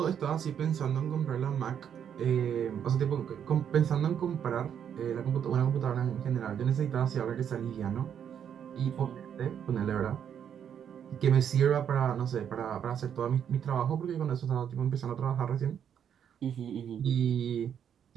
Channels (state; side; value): quieter; left; 8.6 dB